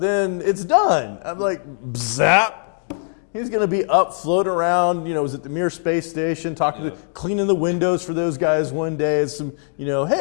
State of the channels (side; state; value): right; silent; digital silence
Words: it's done. I'm like, zap. He's going to be up, floating around, was at the Mir Space Station, cleaning the windows for those guys one day. It's some,